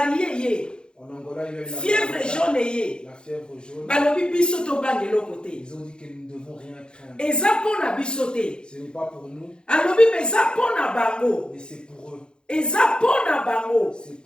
ye. En Angola, il y a eu la Fièvre jaune ye. La fièvre jaune. Balobi biso to bangelo côté. Ils ont dit que nous ne devons rien craindre. Eza pona biso te. Ce n'est pas pour nous, Alobi eza pona bango. mais c'est pour eux. Eza pona bango. C'est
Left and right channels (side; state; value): right; late; 0.049 ms